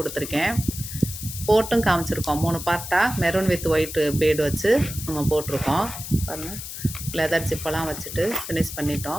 போட்டும் காமிச்சிருக்கோம். 3 பார்ட்டாக மெரூன் வித் ஒயிட் பீடு வச்சு நம்ம போட்டிருக்கோம் பாருங்கள். லெதர் ஜிப்பெல்லாம் வச்சுட்டு ஃபினிஷ்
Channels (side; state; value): left; noise; hiss, 9 dB below the sound